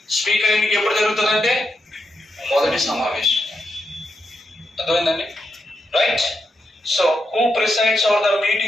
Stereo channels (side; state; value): both; normal; correlation 0.84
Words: స్పీకర్ ఎన్నిక ఎప్పుడు జరుగుతుందంటే మొదటి సమావేశం. అర్థమైందండి? Right. So, who presides over the